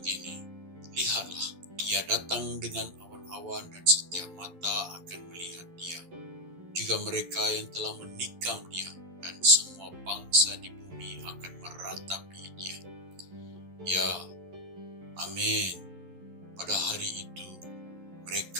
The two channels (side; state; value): left; late; 11 ms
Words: lihatlah, ia datang dengan awan-awan dan setiap mata akan melihat dia. Juga mereka yang telah menikam dia dan semua bangsa di bumi akan meratapi dia. Ya, amin. Pada hari itu,